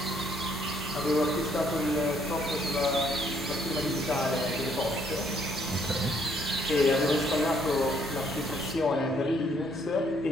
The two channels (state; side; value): normal; both; correlation 0.67